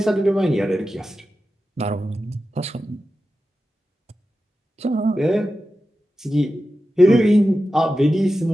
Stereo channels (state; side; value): normal; both; correlation 0.92